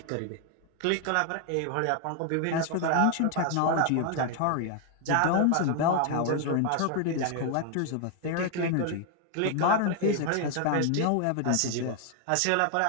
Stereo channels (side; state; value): both; different; correlation 0.00